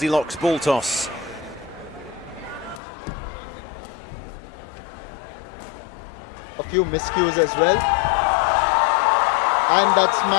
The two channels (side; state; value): right; drops out; at 2.8 s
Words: ball toss. A few miscues as well. And that